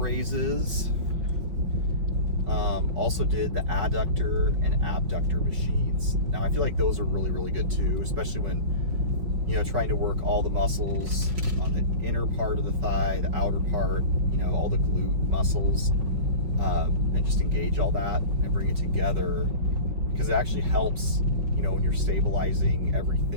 Also did the adductor and abductor machines. Now I feel like those are really, really good too, especially when, you know, trying to work all the muscles on the inner part of the thigh, the outer part, you know, all the glute muscles, and just engage all that and bring it together, because it actually helps, you know, when you're stabilizing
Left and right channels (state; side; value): late; left; 5.4 ms